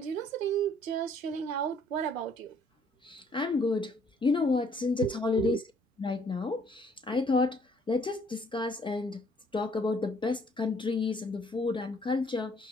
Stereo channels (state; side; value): normal; both; correlation 0.62